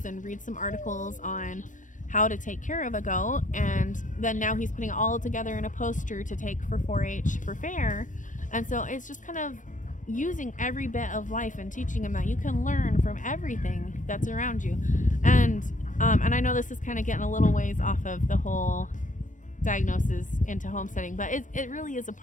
and read some articles on how to take care of a goat. And then now he's putting it all together in a poster to take for 4-H for fair. And so it's just kind of using every bit of life and teaching him that you can learn from everything that's around you. And I know this is kind of getting a little ways off of the whole diagnosis into homesteading, but it really is a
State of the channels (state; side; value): late; right; 0.37 ms